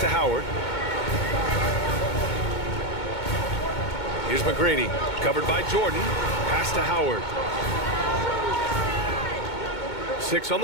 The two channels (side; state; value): right; late; 2.2 ms